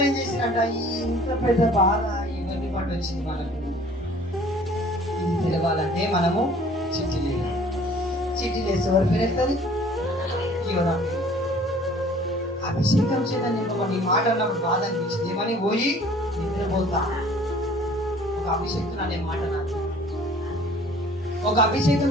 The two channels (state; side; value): normal; both; correlation 0.52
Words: ఏం చేసినట్ట? ఈ ఇంత పెద్ద బాధ ఎవరిని పట్టు వచ్చింది మనకు? ఇది తెలవాలంటే మనము చీటి లేదు. చీటి లేసి ఎవరి పేరు ఎత్తది? యోనా పేరు. అభిషేకం చేత నింపబడి ఈ మాట అన్నప్పుడు బాధ అనిపించింది. ఏమని? పోయి నిద్రపోతా. ఒక అభిషేకం అనే మాట నాకు. ఒక అభిషేకం